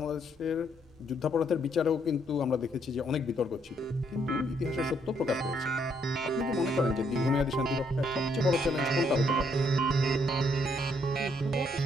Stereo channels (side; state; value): both; normal; correlation 0.71